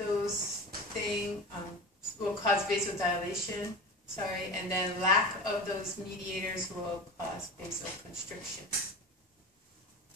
things will cause vasodilation, and then lack of those mediators will cause vasoconstriction.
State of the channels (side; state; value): both; normal; correlation 0.30